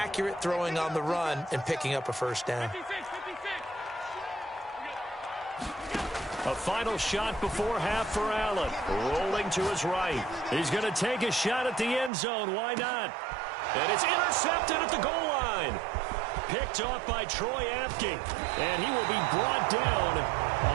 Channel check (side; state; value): left; drops out; at 12.1 s